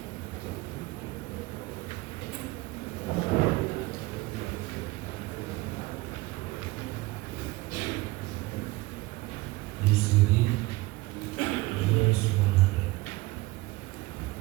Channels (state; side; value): quieter; left; 20.6 dB